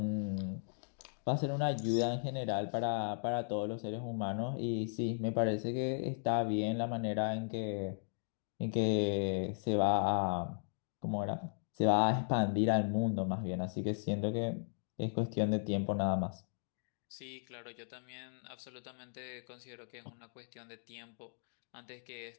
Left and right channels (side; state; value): right; silent; digital silence